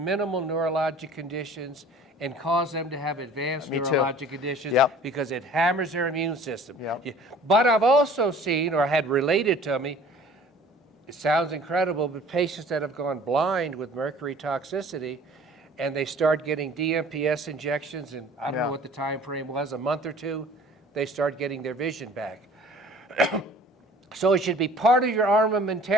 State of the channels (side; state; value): both; normal; correlation 0.49